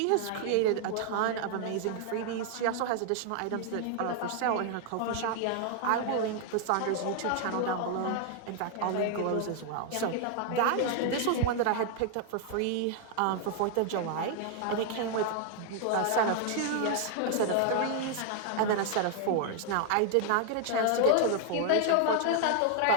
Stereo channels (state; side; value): different; both; correlation 0.00